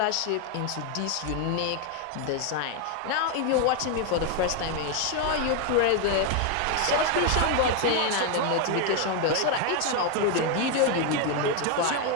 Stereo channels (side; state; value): both; different; correlation 0.01